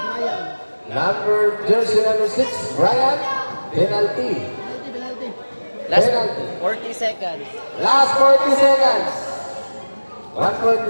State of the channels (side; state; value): both; inverted; correlation -1.00